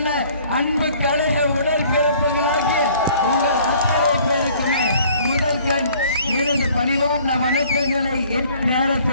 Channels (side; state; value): both; inverted; correlation -0.55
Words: அன்பு கழக உடற்பிறப்புகளாகிய உங்கள் அத்தனை பேருக்குமே முதல் கண் எனது பணிவான வணக்கங்களை